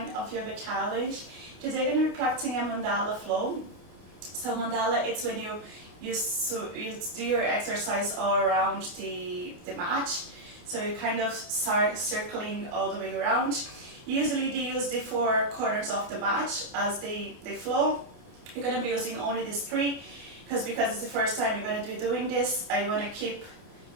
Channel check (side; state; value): left; late; 28 ms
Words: of yoga challenge. Today we're going to be practicing a mandala flow. So mandala, it's when you do your exercise all around the mat. So you kind of start circling all the way around. Usually they use the 4 corners of the mat as they flow. You're going to be using only these 3 because it's the first time you're going to be doing this. I want to keep